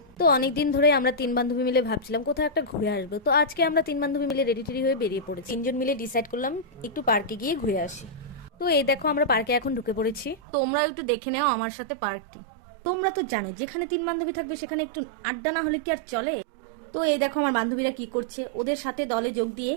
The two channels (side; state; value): left; drops out; at 10.4 s